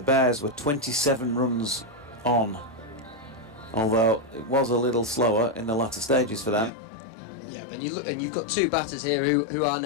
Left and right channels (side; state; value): right; drops out; at 6.7 s